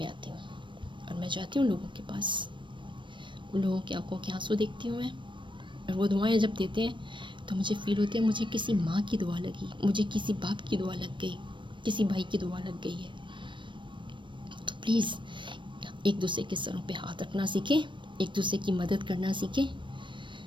آتی ہوں. اور میں جاتی ہوں لوگوں کے پاس, ان لوگوں کی آنکھوں کے آنسو دیکھتی ہوں میں. اور وہ دعائیں جب دیتے ہیں تو مجھے فیل ہوتے ہیں مجھے کسی ماں کی دعا لگی, مجھے کسی باپ کی دعا لگ گئی, کسی بھائی کی دعا لگ گئی ہے. تو پلیز ایک دوسرے کے سروں پہ ہاتھ رکھنا سیکھیں, ایک دوسرے کی مدد کرنا سیکھیں,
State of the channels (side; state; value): left; late; 0.23 ms